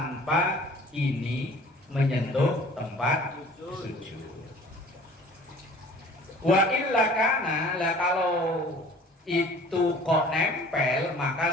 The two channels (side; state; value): both; normal; correlation 0.48